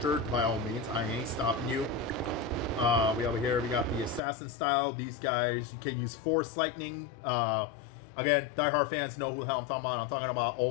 by all means, I ain't stopping you. We over here, we got the assassin style. These guys can use force lightning. Again, diehard fans know who the hell I'm talking about. I'm talking about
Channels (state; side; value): drops out; right; at 4.2 s